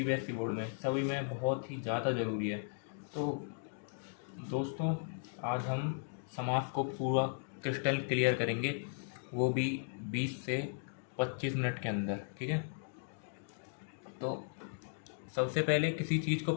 बोर्ड में, सभी में बहुत ही ज़्यादा ज़रूरी है। तो दोस्तों, आज हम समास को पूरा क्रिस्टल क्लियर करेंगे, वो भी 20 से 25 मिनट के अंदर। ठीक है। तो सबसे पहले किसी चीज़ को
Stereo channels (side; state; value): right; silent; digital silence